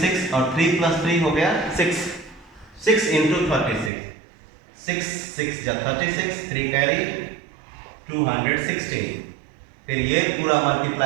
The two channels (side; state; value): left; drops out; at 3.9 s